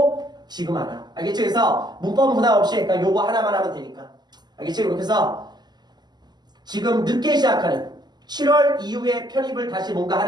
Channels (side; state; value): left; late; 0.21 ms